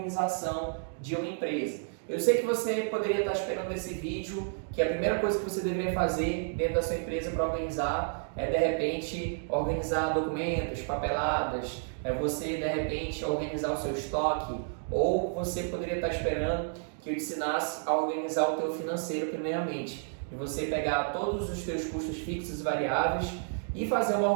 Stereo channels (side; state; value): left; silent; digital silence